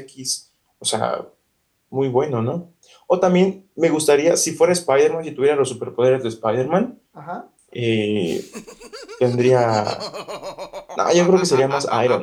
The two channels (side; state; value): both; identical; correlation 1.00